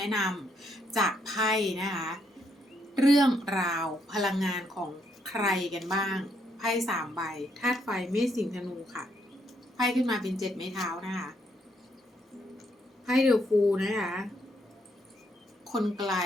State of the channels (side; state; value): both; normal; correlation 0.74